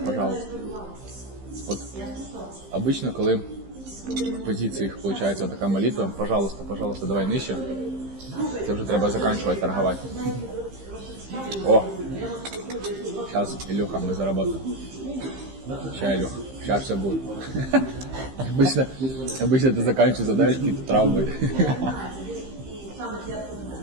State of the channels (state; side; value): late; left; 15 ms